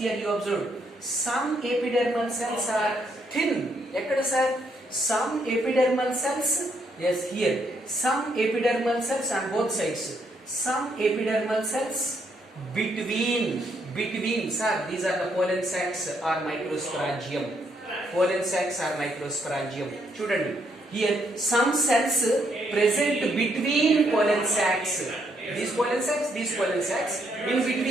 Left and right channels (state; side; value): normal; both; correlation 0.74